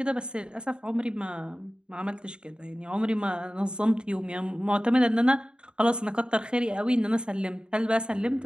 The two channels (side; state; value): left; late; 0.050 ms